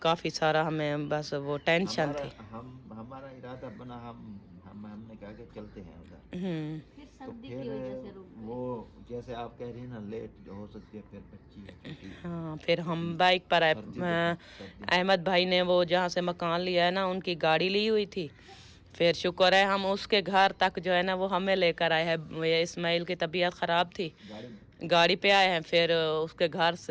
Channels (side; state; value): both; identical; correlation 1.00